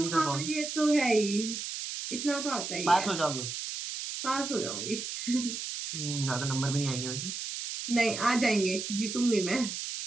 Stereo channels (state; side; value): noise; right; hiss, 5 dB below the sound